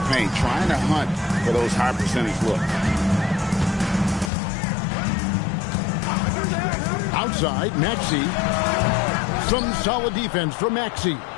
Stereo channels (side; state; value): right; drops out; at 4.3 s